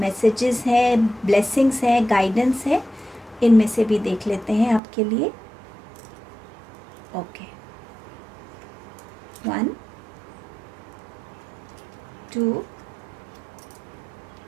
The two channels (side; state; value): left; drops out; at 4.8 s